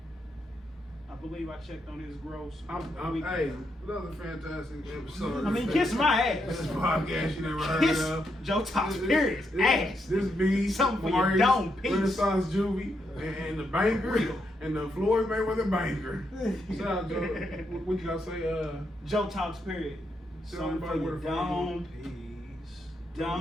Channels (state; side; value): normal; both; correlation 0.80